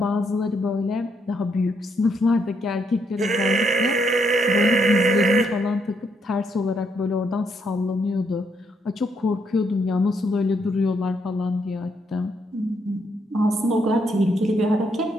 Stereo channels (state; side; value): normal; both; correlation 0.75